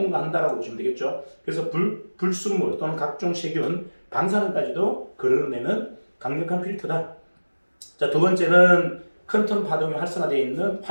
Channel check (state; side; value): inverted; both; correlation -1.00